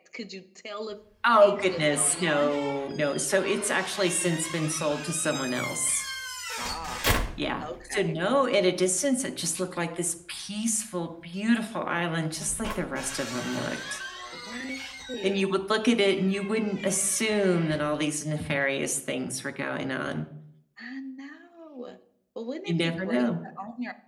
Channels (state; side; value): identical; both; correlation 1.00